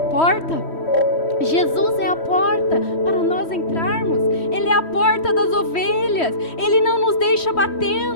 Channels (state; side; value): late; right; 3.1 ms